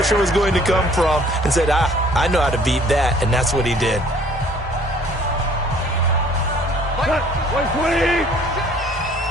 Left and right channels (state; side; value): normal; both; correlation 0.56